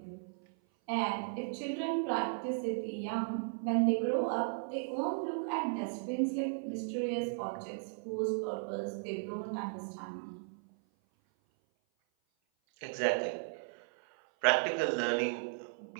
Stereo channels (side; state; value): left; silent; 54 dB below the other